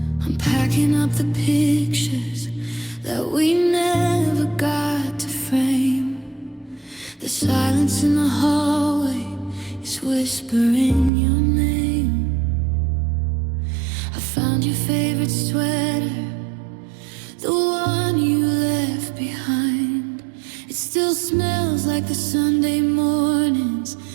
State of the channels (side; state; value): left; drops out; at 11.1 s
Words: I'm packing up the pictures that we never got to frame. The silence in the hallway is whispering your name. I found your favorite sweater, the one you left behind. It still smells like the Sunday mornings